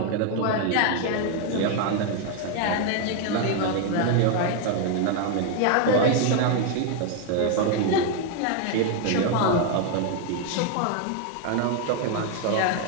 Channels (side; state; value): both; different; correlation 0.01